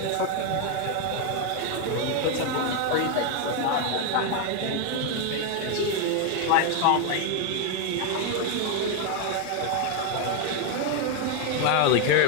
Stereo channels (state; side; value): different; both; correlation 0.01